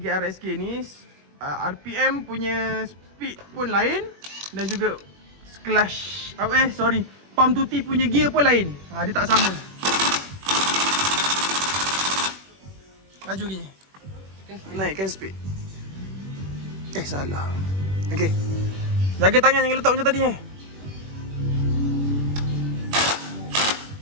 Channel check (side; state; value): left; late; 21 ms